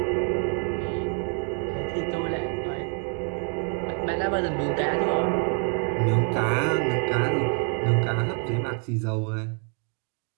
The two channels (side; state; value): left; quieter; 39.7 dB